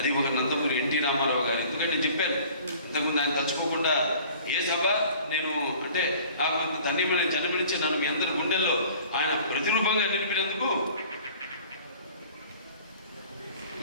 ఒక నందమూరి ఎన్టీ రామారావు గారు. ఎందుకంటే నేను చెప్పాను ఇంతకుముందు, ఆయన తలుచుకోకుండా ఏ సభ నేను అంటే నాకు ధన్యమని జన్మనిచ్చి నన్ను మీ అందరి గుండెల్లో ఆయన ప్రతిరూపంగా నిలిపినందుకు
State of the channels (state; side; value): inverted; both; correlation -0.48